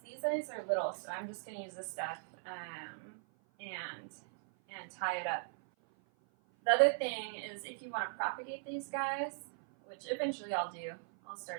guys are little, so I'm just gonna use this stuff and tie it up. The other thing is if you want to propagate these guys, which eventually I'll do, I'll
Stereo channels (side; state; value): left; silent; 52 dB below the other